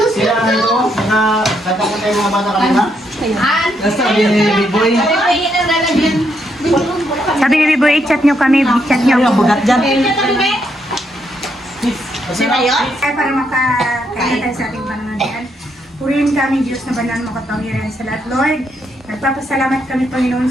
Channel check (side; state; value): both; normal; correlation 0.76